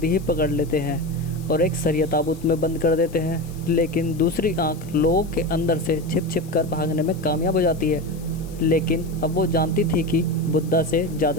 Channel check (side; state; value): left; noise; hiss, 22 dB below the sound